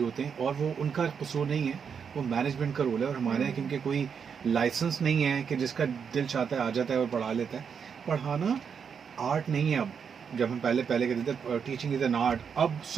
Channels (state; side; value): quieter; left; 6.7 dB